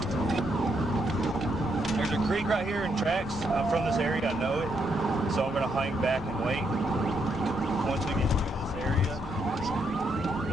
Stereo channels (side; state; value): both; normal; correlation 0.77